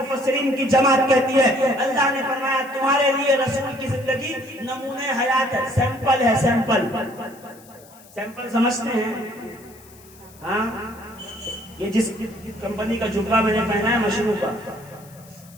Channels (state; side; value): noise; left; hiss, 24 dB below the sound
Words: کی جماعت کہتی ہے اللہ نے فرمایا تمہارے لیے رسول کی زندگی نمونہ حیات ہے، سیمپل ہے، سیمپل سمجھتے ہیں؟ ہاں، یہ جس کمپنی کا جبہ میں نے پہنا ہے مشروع کا،